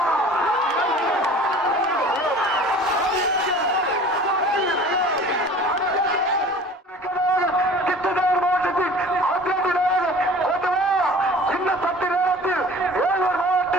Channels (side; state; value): both; normal; correlation 0.44